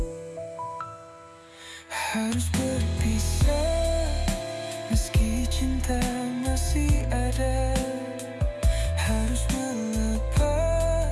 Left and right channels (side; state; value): both; identical; correlation 1.00